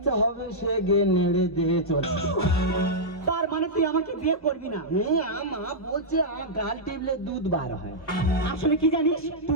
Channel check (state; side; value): late; right; 1.2 ms